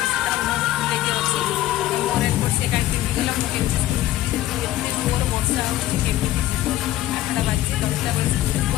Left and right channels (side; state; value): right; quieter; 14.5 dB